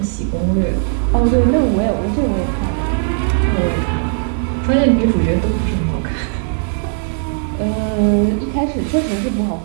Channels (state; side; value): silent; left; 61 dB below the other